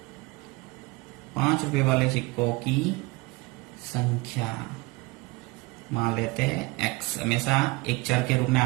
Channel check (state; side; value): quieter; left; 23.3 dB